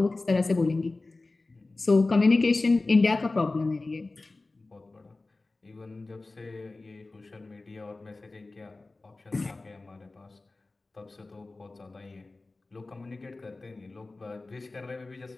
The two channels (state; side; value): quieter; right; 3.3 dB